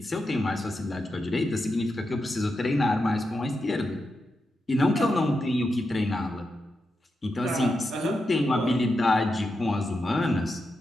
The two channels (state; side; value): normal; both; correlation 0.87